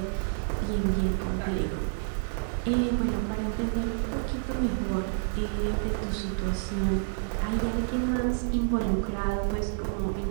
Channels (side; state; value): left; silent; 59 dB below the other